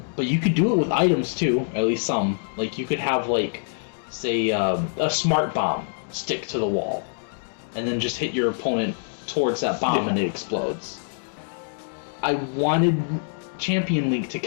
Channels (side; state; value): right; silent; digital silence